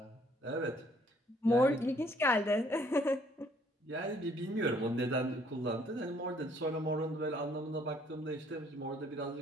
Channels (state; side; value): normal; both; correlation 0.63